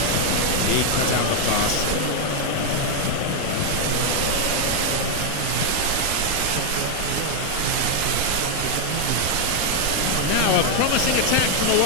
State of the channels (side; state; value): both; different; correlation 0.00